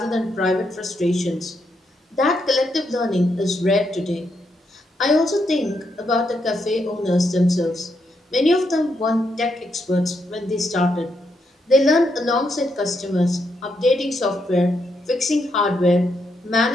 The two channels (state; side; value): normal; both; correlation 0.79